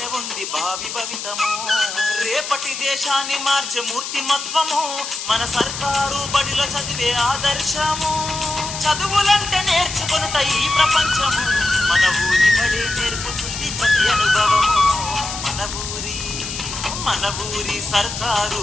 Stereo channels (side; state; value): left; noise; hiss, 7 dB below the sound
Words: ఉంది భావి భవితము. రేపటి దేశాన్ని మార్చే మూర్తిమత్వము మన సర్కారు బడిలో చదివే ఆదర్శము. చదువులంటే నేర్చుకొనుట ఈ ప్రపంచము, మన ఊరి బడే నేర్పుతుంది ప్రతి అనుభవము. మన ఊరి సర్కారు